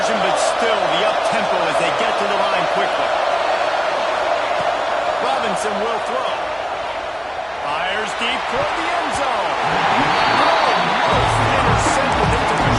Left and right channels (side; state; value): both; identical; correlation 1.00